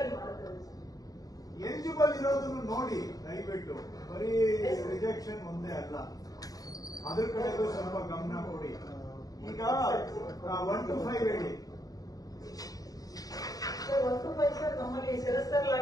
ಎಲಿಜಿಬಲ್ ಇರೋದನ್ನು ನೋಡಿ ದಯವಿಟ್ಟು. ಬರೀ ರಿಜೆಕ್ಷನ್ ಒಂದೇ ಅಲ್ಲ, ಅದ್ರ ಕಡೆಗೂ ಸ್ವಲ್ಪ ಗಮನ ಕೊಡಿ. ಈಗ 1 to 5 ಹೇಳಿ. 1 to 5 ಸರ್, ನಮ್ಮಲ್ಲಿ ಸೆರೆಸ್ಟರ್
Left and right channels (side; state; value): right; late; 0.18 ms